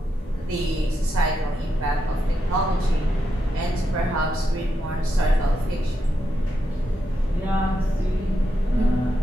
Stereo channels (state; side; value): normal; both; correlation 0.84